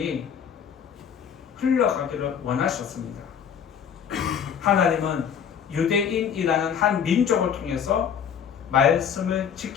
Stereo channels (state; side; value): quieter; right; 7.8 dB